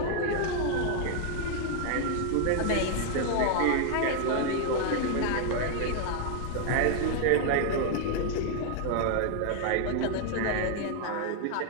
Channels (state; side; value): different; both; correlation 0.00